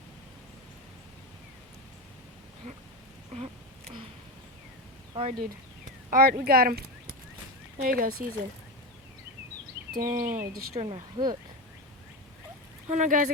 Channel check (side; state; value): both; normal; correlation 0.18